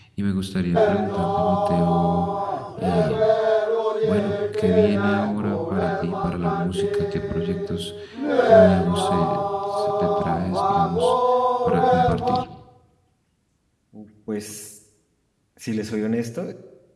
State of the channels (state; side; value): identical; both; correlation 1.00